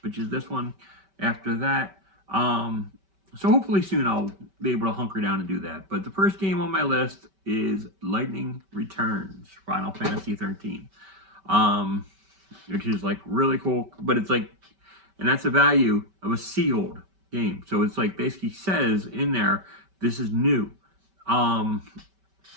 which is this one, after that. So hopefully soon I'll be able to hunker down and do that. But the first game on my list is Lightning Returns, Final Fantasy 13. Which is like really cool, but it's like, and that's the value of a sealed game. So it's like basically says in there, this is new.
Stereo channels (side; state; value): left; late; 5.2 ms